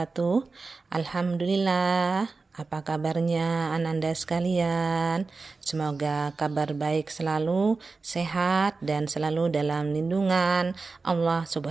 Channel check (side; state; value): left; quieter; 4.0 dB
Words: Alhamdulillah, apa kabarnya Ananda sekalian? Semoga kabar baik selalu, sehat dan selalu dalam lindungan Allah